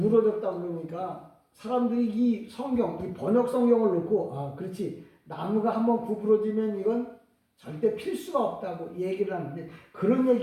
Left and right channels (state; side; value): identical; both; correlation 1.00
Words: 그러니까 사람들이 이 성경, 이 번역 성경을 놓고 아 그렇지 나무가 한번 구부러지면 이건 절대 필 수가 없다고 얘기를 하는데, 그런